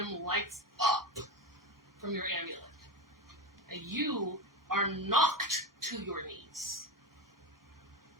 lights up from your amulet. And you are knocked to your knees.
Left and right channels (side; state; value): both; normal; correlation 0.20